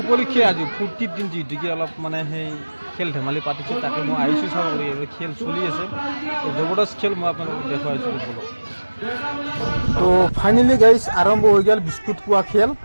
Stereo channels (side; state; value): both; inverted; correlation -1.00